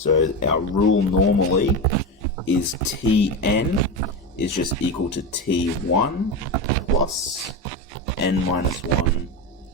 our rule normally is Tn is just equal to T1 plus n minus 1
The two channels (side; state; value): both; normal; correlation 0.18